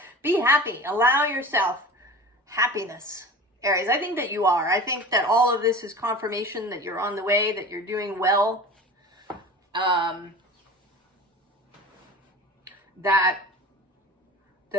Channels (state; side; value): normal; both; correlation 0.36